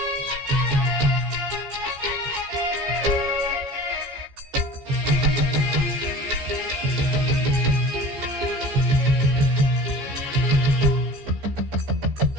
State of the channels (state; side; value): late; left; 14 ms